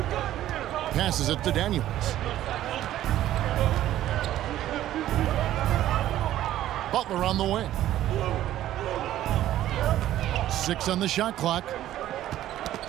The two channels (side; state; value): left; quieter; 13.2 dB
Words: Passes it to Daniels. Butler on the wing. 6 on the shot clock.